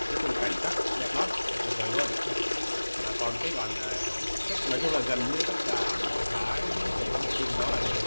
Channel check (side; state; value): both; inverted; correlation -1.00